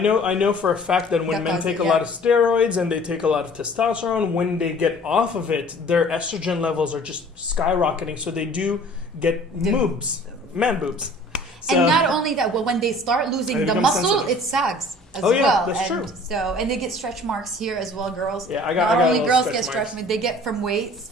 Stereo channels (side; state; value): both; normal; correlation 0.50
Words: know for a fact that when men take a lot of steroids and they take a lot of testosterone, when they get off of it, their estrogen levels are just skyrocketing. So they do get boobs. Man boobs. So, and not only that, well, when they start losing the muscle, sensitive. It sags as well. Yeah, that's true. So, and they get stretch marks here as well, girls. Yeah, not only girls get stretch marks, they get from weights,